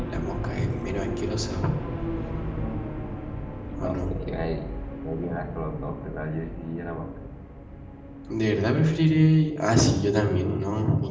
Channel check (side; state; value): both; identical; correlation 1.00